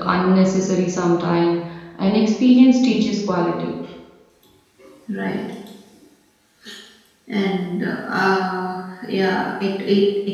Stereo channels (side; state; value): both; identical; correlation 1.00